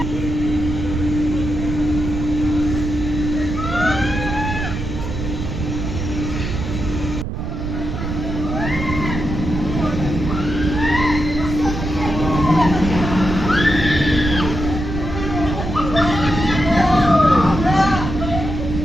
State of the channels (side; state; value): right; noise; rumble, 4 dB below the sound